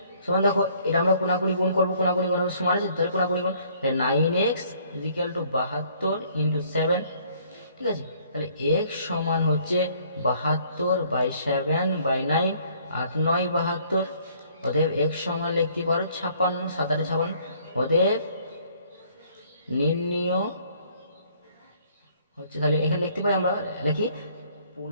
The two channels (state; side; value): inverted; both; correlation -0.61